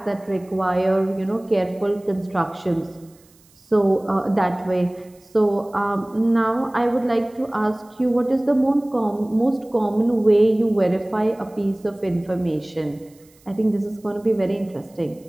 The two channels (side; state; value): right; noise; hiss, 30 dB below the sound